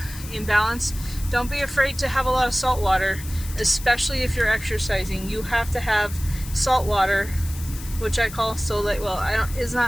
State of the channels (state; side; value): noise; left; hiss, 14 dB below the sound